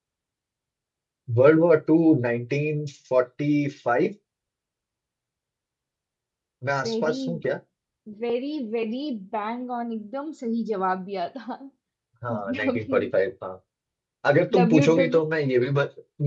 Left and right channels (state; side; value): identical; both; correlation 1.00